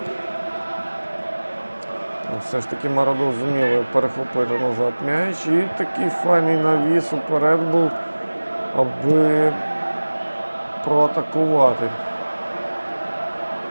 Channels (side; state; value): both; inverted; correlation -1.00